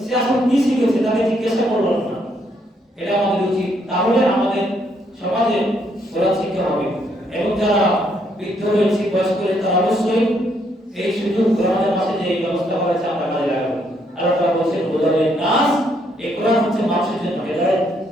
সে আসলে কি শিখেছে, তাকে জিজ্ঞাসা করলাম না। এটা আমাদের উচিত। তাহলে আমাদের সমাজে কোরআন শিক্ষা হবে, এবং যারা বৃদ্ধ রয়েছে, বয়স্ক রয়েছে, তারা অবশ্যই এই সুযোগ কোরআনের মাসে যে ব্যবস্থা করেছে আমরা কাজে লাগাবো। আর তারা বলছেন হুদাল্লিন নাস, এই কোরআন হচ্ছে মানুষের জন্য হেদায়েত।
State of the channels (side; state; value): both; normal; correlation 0.72